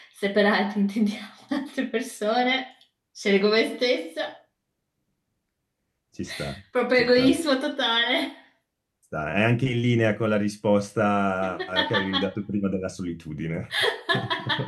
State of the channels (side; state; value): both; identical; correlation 1.00